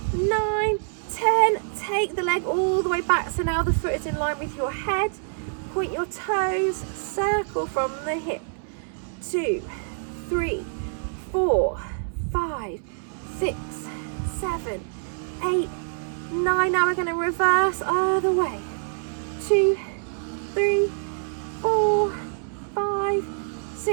9, 10. Take the leg all the way back, so now the foot is in line with your head. Point your toes, circle from the hip. 2, 3, 4, 5, 6, 7, 8, 9. Now we're going to reverse other way. 2, 3, 4, 5,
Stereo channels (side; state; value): left; silent; 61 dB below the other